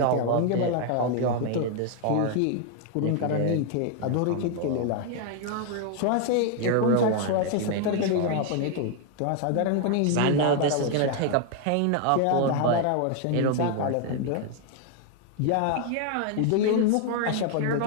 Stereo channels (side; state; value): both; different; correlation 0.00